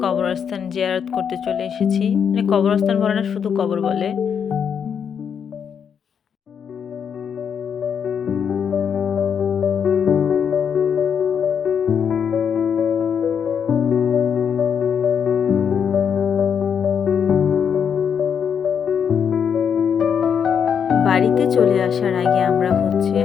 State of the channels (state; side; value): quieter; right; 7.4 dB